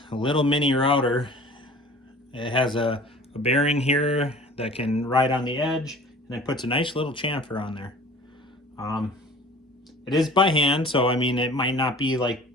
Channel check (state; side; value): normal; both; correlation 0.45